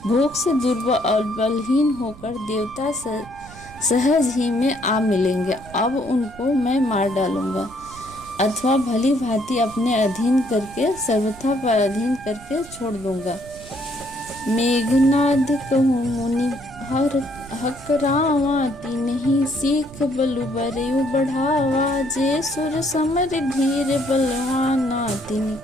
भूख से दुर्बल और बलहीन होकर देवता सहज ही में आ मिलेंगे, अब उनको मैं मार डालूंगा, अथवा भली भांति अपने अधीन करके सर्वथा पराधीन करके छोड़ दूंगा। मेघनाद कहूँ मुनि हकरावा, तिन्हि सीख बलु बरयु बढ़ावा, जे सुर समर धीर बलवाना,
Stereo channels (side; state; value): right; noise; rumble, 18 dB below the sound